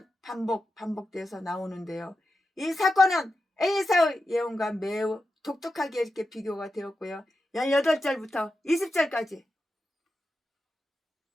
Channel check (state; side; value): normal; both; correlation 0.90